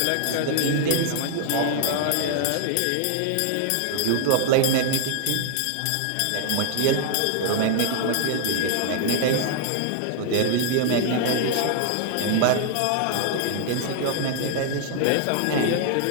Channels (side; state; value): both; different; correlation 0.00